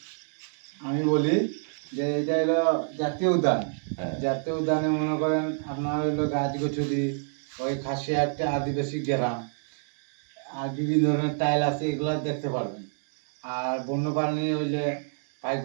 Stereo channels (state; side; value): silent; left; digital silence